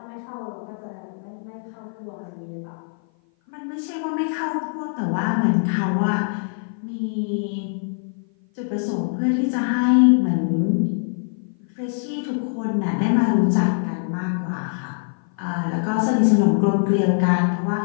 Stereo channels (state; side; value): silent; right; 56 dB below the other